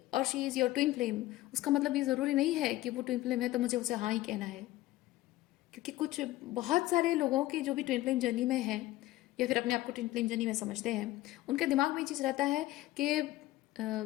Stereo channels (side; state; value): right; quieter; 16.7 dB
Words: और she is your twin flame, उसका मतलब ये ज़रूरी नहीं है कि वो ट्विन फ्लेम है तो मुझे उसे हाँ ही कहना है। क्योंकि कुछ बहुत सारे लोगों की जो भी ट्विन फ्लेम जर्नी में है या फिर अपने आप को ट्विन फ्लेम जर्नी में समझते हैं, उनके दिमाग में ये चीज़ रहता है कि